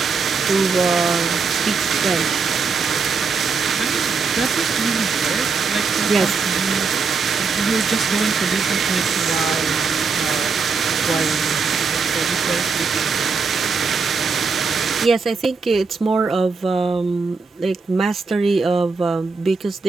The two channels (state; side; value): quieter; left; 4.9 dB